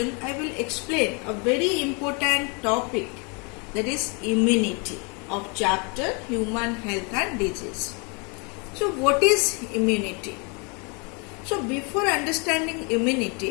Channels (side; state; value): right; quieter; 33.0 dB